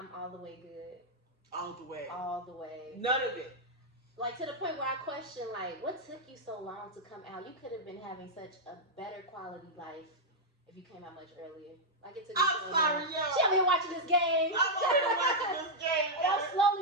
all the way good. All the way. All the way. None of it. Like, to the point where I question, like, what took you so long to come out? You could have been having such a better quality life if you came out much earlier. Like, it took you I'm sorry, yo. She over here watching this game. I'm over here watching this game. And I'm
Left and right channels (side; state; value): both; normal; correlation -0.04